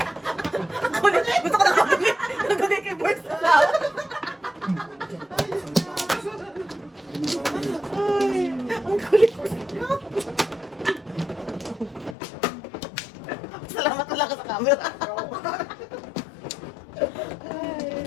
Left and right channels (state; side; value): drops out; right; at 12.2 s